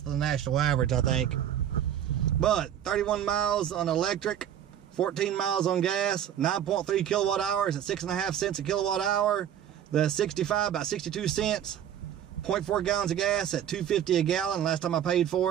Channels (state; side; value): quieter; left; 10.1 dB